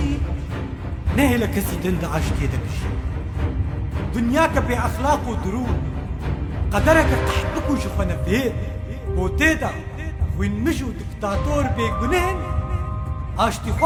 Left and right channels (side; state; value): both; identical; correlation 1.00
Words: نه لکسی دند عاشتی ده بجی دنیا که بی اخلاق و درون قدرك قحبك وشفنا فيه وتيدا وين مشوا دكتاتور بيقنهن اشتي